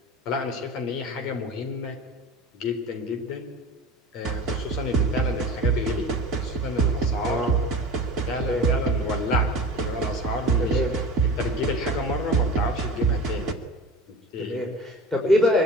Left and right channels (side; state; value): both; normal; correlation 0.35